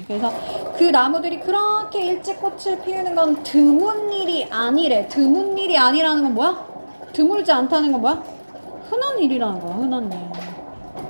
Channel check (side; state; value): both; inverted; correlation -1.00